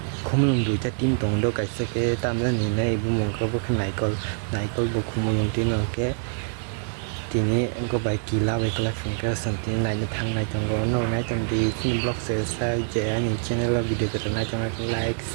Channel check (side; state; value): left; silent; 58 dB below the other